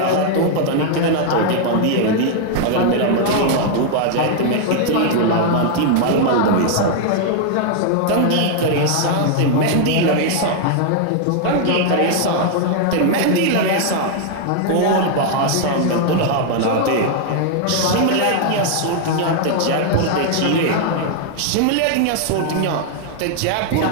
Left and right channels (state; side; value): different; both; correlation 0.00